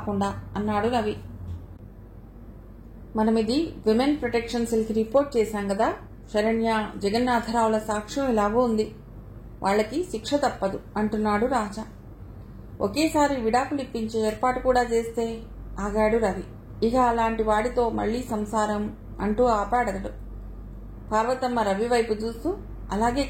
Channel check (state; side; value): identical; both; correlation 1.00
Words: అన్నాడు రవి. మనమిది విమెన్ ప్రొటెక్షన్ సెల్కి రిపోర్ట్ చేశాం కదా. శరణ్య, జగన్నాథరావుల సాక్ష్యం ఎలాగో ఉంది. వాళ్ళకి శిక్ష తప్పదు అంటున్నాడు రాజా. ఒకేసారి విడాకులు ఇప్పించే ఏర్పాటు కూడా చేస్తే ఆగాడు రవి. ఇక అలాంటి వాడితో మళ్లీ సంసారం అంటూ ఆపాడతడు. పార్వతమ్మ రవి వైపు చూస్తూ, అలాగే